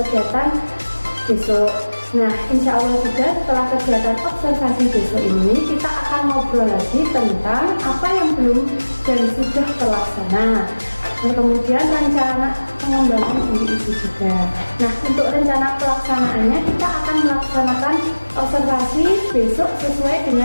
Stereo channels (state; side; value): inverted; both; correlation -1.00